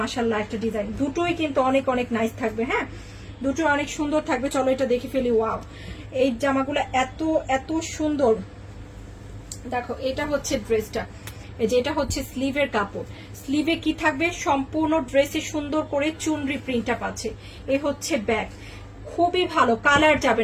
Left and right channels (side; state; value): both; identical; correlation 1.00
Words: একটা ডিজাইন। দুটোই কিন্তু অনেক অনেক নাইস থাকবে। হ্যাঁ, দুটো অনেক সুন্দর থাকবে। চলো এটা দেখে ফেলি। ওয়াও, এই জামাগুলো এত এত সুন্দর। দেখো এটা হচ্ছে ড্রেসটা, এই যে এটা হচ্ছে স্লিভের কাপড়। স্লিভে কি থাকবে, সম্পূর্ণ ড্রেসে সুন্দর করে চুনরি প্রিন্টটা পাচ্ছে। এ হচ্ছে ব্যাক, খুবই ভালো, কালার যাবে